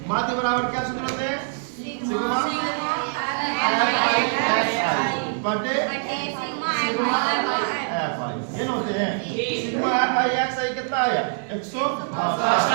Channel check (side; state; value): left; silent; digital silence